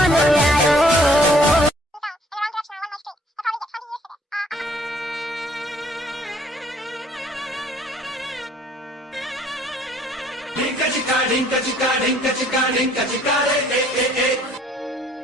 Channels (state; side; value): normal; both; correlation 0.60